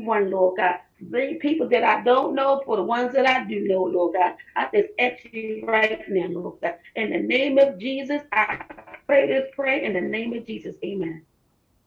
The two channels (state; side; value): identical; both; correlation 1.00